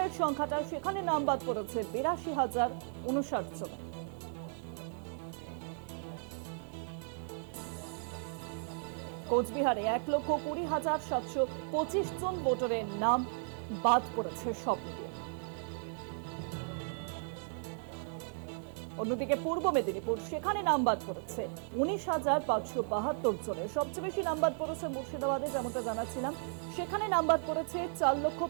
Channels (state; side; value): silent; left; 54 dB below the other